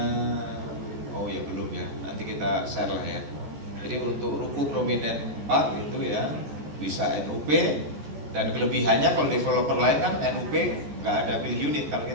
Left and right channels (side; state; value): left; late; 14 ms